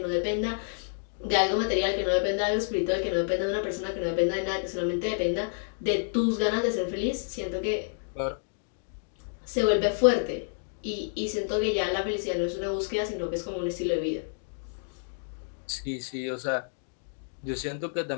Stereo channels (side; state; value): right; silent; digital silence